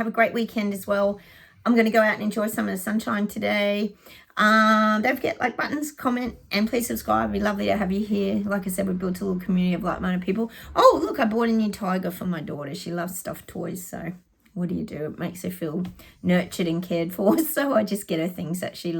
a great weekend as well. I'm going to go out and enjoy some of the sunshine today. Don't forget, like buttons, comment, and please subscribe. It'd be lovely to have you here. Like I said, we built a little community of like-minded people. Oh, look, I bought a new tiger for my daughter. She loves stuffed toys, so what do? It makes her feel nurtured and cared for, so I just get her things that she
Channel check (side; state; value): both; identical; correlation 1.00